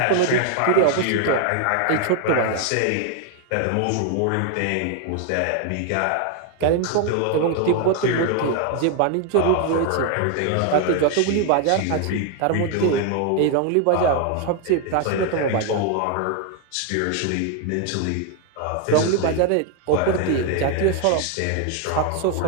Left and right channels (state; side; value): different; both; correlation 0.01